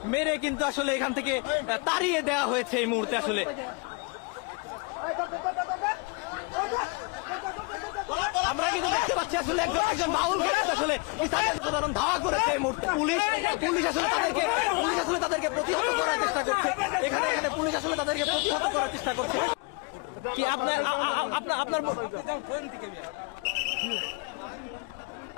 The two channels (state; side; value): quieter; right; 30.4 dB